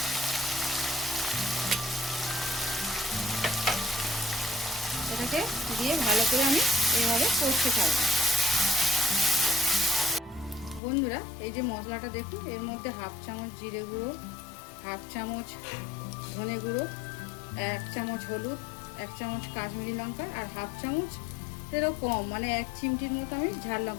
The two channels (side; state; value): right; drops out; at 10.8 s